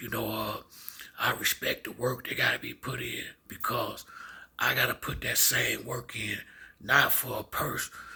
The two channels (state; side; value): identical; both; correlation 1.00